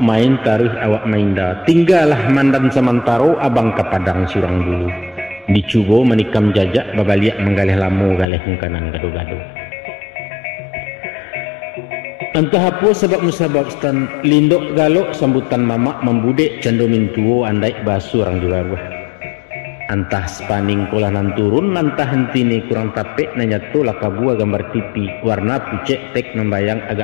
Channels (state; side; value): drops out; right; at 8.2 s